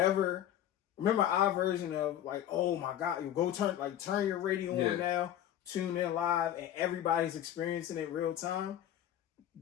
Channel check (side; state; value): right; quieter; 11.4 dB